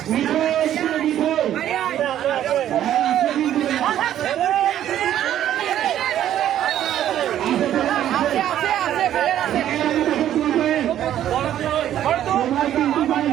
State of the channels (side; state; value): left; quieter; 11.4 dB